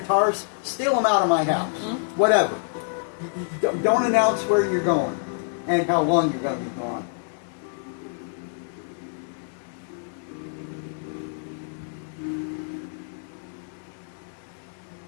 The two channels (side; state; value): right; silent; digital silence